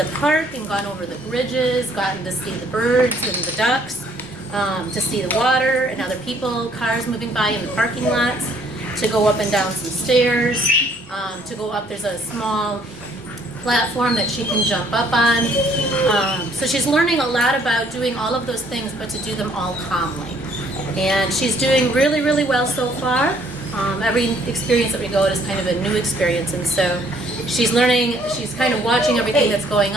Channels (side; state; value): both; normal; correlation 0.63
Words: park and gone over the bridges, gotten to see the birds and the ducks, to see the water and other people, cars moving by in the parking lots, to go up and down some stairs, to go up, there's a small platform that she can jump up on. So she's learning a lot about doing all of those things, but to do them all calmly. And she's doing really, really well so far. Every experience that we go at is kind of a new experience, and so she's learning, she's kind of watching everything that's going